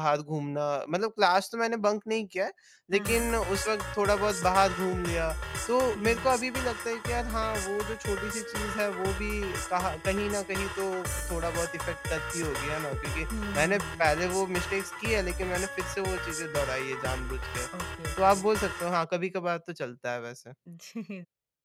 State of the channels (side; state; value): both; identical; correlation 1.00